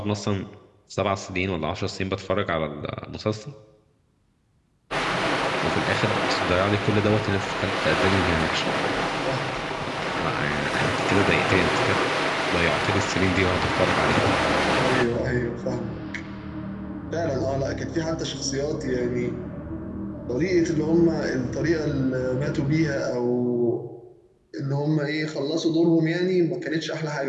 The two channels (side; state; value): both; identical; correlation 1.00